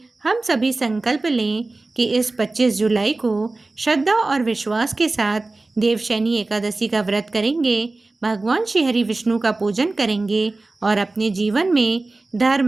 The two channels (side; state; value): left; quieter; 3.3 dB